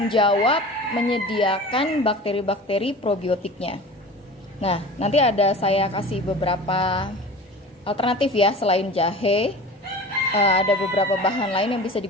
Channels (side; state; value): both; normal; correlation 0.37